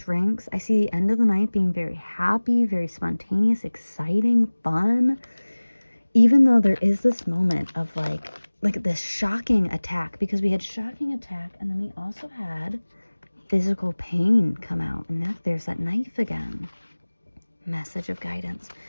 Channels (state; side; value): inverted; both; correlation -1.00